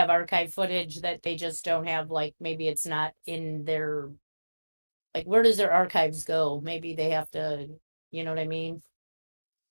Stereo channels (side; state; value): both; inverted; correlation -1.00